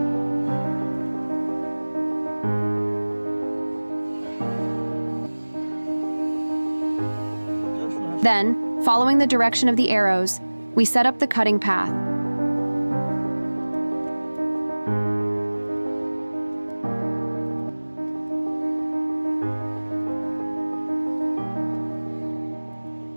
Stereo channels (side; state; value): both; inverted; correlation -1.00